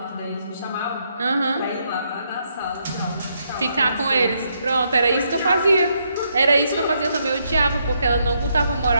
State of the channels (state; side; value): inverted; both; correlation -0.76